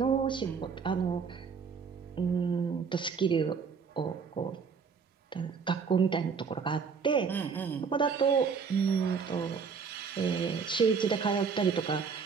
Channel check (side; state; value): left; quieter; 5.8 dB